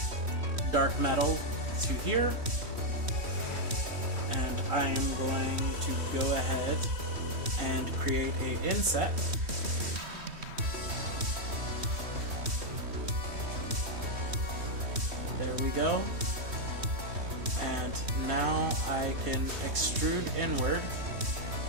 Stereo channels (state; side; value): late; left; 3.1 ms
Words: dark metal to here, and I am going to go ahead and create a inset. There we go. And now I can extrude inward.